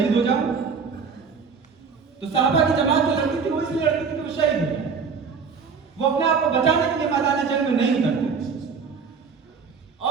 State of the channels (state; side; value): quieter; left; 5.6 dB